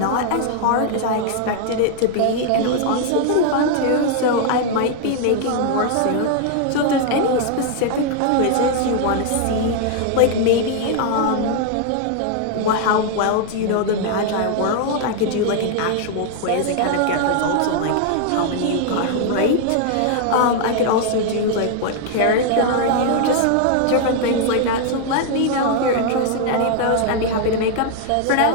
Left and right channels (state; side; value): different; both; correlation 0.00